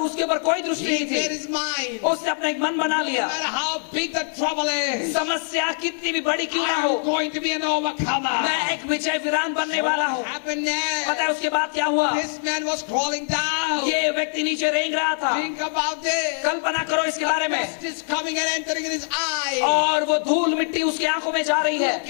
उसके ऊपर कोई दृष्टि He नहीं made थी। his mind. उसने अपना एक मन बना No लिया, matter how big the trouble is, समस्या कितनी भी बड़ी क्यों ना हो, I'm going to be an overcomer. मैं एक विजय वीरान बनने वाला हूँ। What happened पता है there? उसके बाद क्या हुआ? This man was crawling down. ये व्यक्ति नीचे रेंग रहा था। Think about this. कल्पना करो इसके बारे में। Dust is coming and entering in his eye. और वो धूल मिट्टी उसकी आंखों में जा रही है। Look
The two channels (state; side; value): silent; right; 63 dB below the other